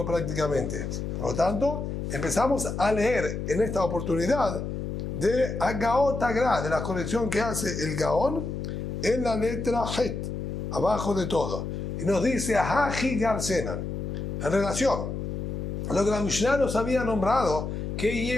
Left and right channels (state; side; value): noise; left; hum, 4 dB below the sound